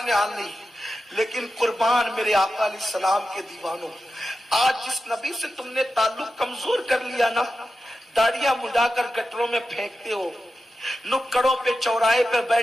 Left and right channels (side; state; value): both; normal; correlation 0.91